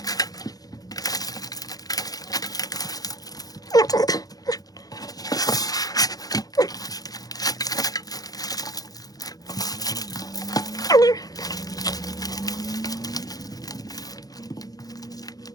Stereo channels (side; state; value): right; late; 0.18 ms